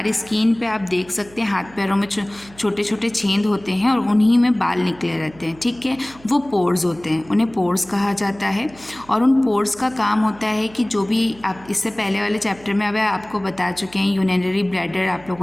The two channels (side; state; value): right; noise; hum, 24 dB below the sound